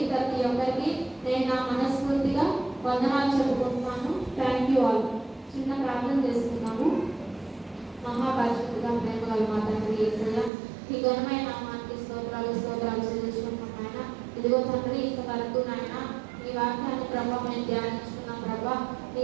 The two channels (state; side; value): drops out; left; at 10.5 s